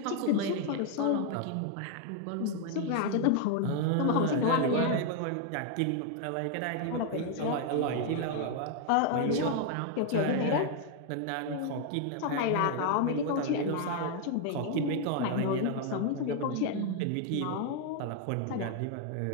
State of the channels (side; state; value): both; different; correlation 0.00